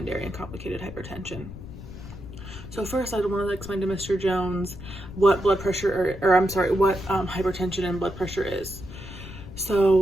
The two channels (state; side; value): noise; left; rumble, 13 dB below the sound